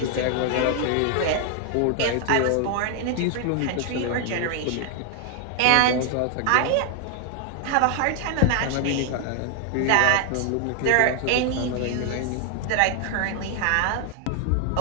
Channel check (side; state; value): both; different; correlation 0.00